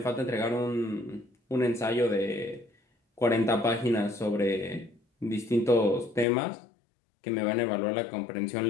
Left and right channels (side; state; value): right; drops out; at 6.2 s